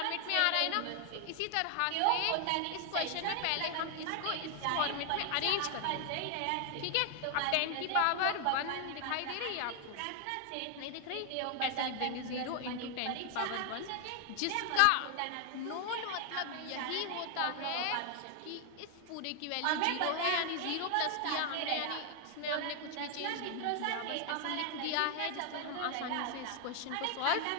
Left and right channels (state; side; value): different; both; correlation 0.00